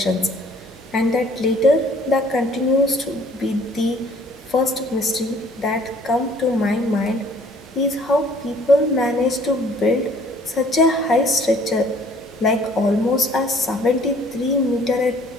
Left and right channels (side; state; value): both; normal; correlation 0.57